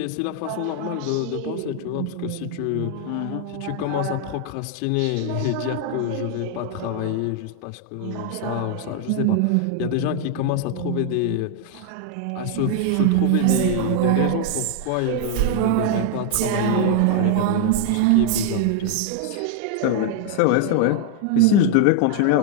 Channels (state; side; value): different; both; correlation 0.00